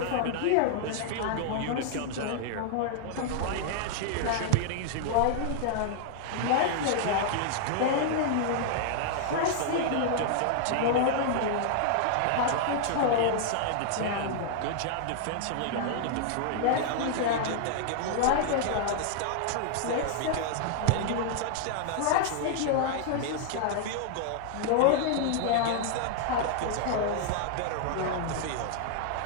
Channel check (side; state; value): both; different; correlation -0.01